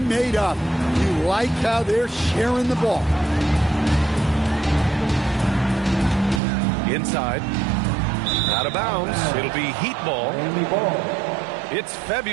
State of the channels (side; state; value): left; drops out; at 6.4 s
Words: up. You like how they're sharing the ball. Inside. Out of bounds. It'll be Heat ball. It's